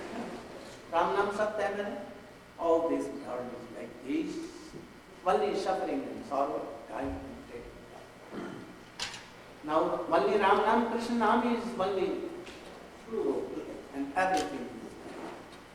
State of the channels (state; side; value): identical; both; correlation 1.00